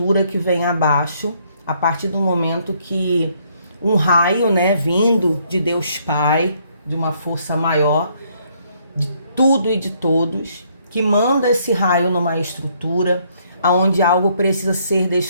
que vem abaixo, a partir do momento que um raio, né, vindo de Deus Pai, de uma força maior, de tudo e de todos, que manda esse raio numa estrutura onde algo precisa ser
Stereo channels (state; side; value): inverted; both; correlation -0.68